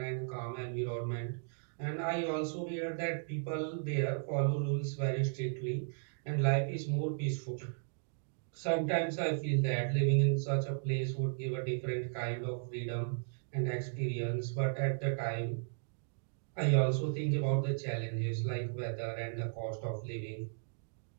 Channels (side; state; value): left; silent; digital silence